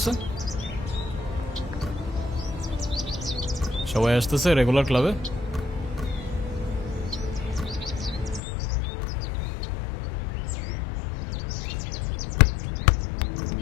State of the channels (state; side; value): drops out; right; at 8.4 s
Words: সবাই আসতেছে রেগুলার ক্লাবে?